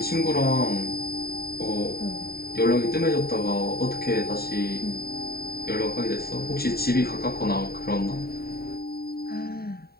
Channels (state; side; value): late; right; 0.45 ms